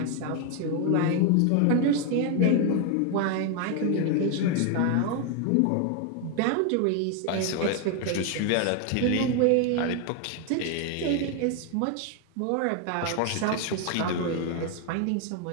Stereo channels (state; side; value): different; both; correlation 0.01